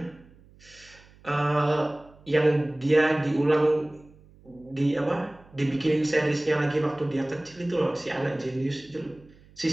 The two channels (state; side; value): noise; right; hum, 26 dB below the sound